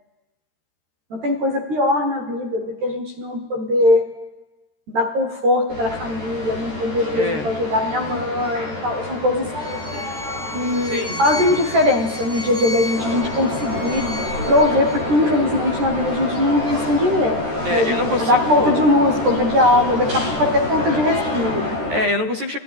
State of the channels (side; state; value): left; late; 13 ms